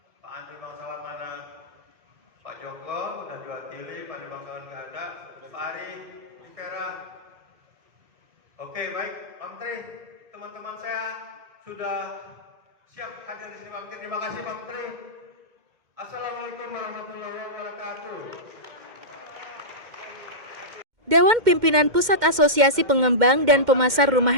Pak Andri Bangsawan mana? Pak Joko udah diwakili, Pak Andri Bangsawan nggak ada. Pak Ari, Vera. Oke, baik, Pak Menteri, teman-teman saya sudah siap hadir di sini Pak Menteri. Terima kasih Pak Menteri. Assalamualaikum warahmatullahi wabarakatuh. Dewan Pimpinan Pusat Asosiasi Pengembang dan Pemasar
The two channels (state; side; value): late; left; 2.1 ms